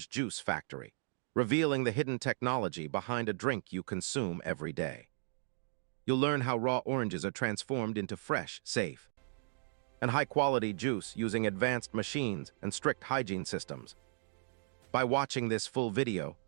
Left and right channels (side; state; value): left; silent; digital silence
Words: juice factory, revealing the hidden technology behind a drink you consume every day. You'll learn how raw oranges are transformed into fresh, safe, and high-quality juice using advanced machines and strict hygiene systems. By watching this full video,